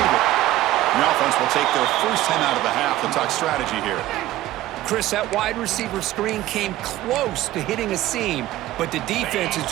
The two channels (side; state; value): left; quieter; 15.2 dB